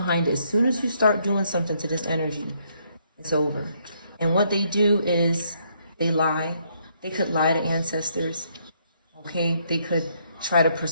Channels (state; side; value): inverted; both; correlation -0.71